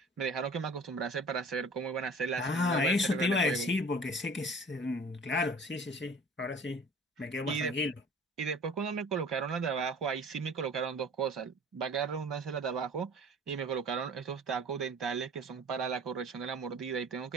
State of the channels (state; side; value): normal; both; correlation 0.46